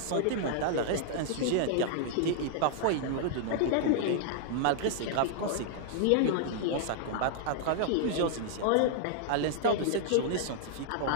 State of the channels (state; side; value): different; both; correlation -0.01